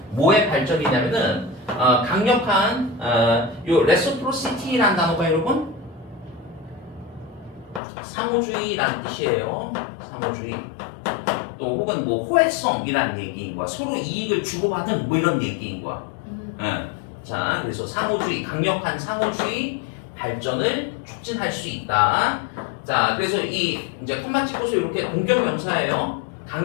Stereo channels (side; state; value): right; drops out; at 7.8 s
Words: 뭐의 발전이냐면은 강력한 요 레시프로시티라는 단어가 여러분 상호주의라는 뜻이에요. 상호주의. 또 혹은 뭐 호혜성이라는 얘기인 거야. 서로 이익을 주고받은 뭐 이런 얘기인 거야. 자, 그래서 상호주의, 강력한 상호주의 발전을 촉진할 수 있다. 자, 그래서 이 이제 컴마 찍고서 이렇게 동격명사예요.